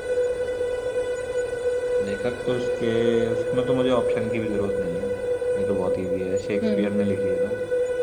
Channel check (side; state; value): both; identical; correlation 1.00